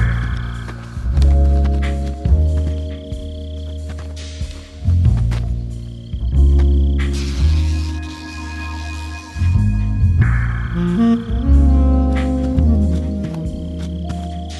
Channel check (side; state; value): both; identical; correlation 1.00